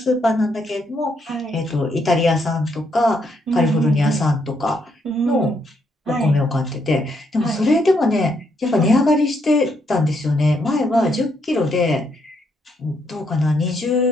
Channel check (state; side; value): normal; both; correlation 0.75